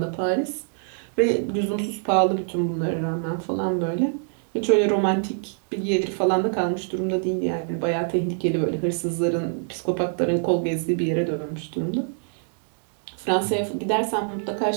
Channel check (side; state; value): left; silent; digital silence